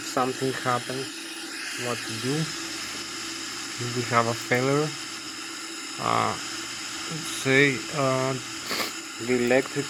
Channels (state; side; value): identical; both; correlation 1.00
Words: something happens, what to do. If we have a failure. Let's say the